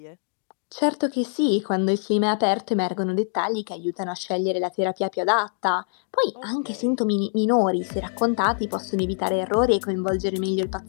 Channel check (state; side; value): silent; right; digital silence